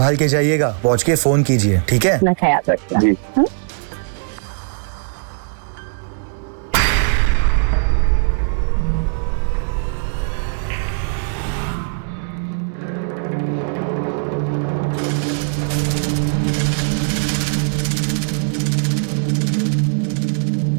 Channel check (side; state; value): left; silent; 64 dB below the other